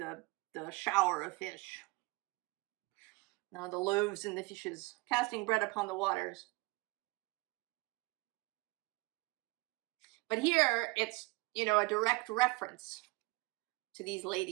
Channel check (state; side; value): quieter; left; 24.6 dB